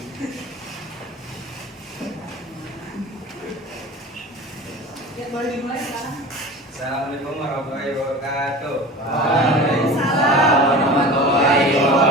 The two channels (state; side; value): normal; both; correlation 0.35